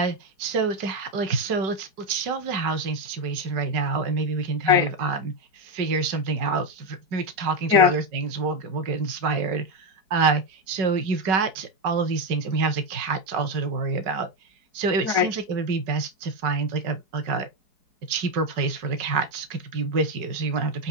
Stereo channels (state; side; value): late; left; 4.7 ms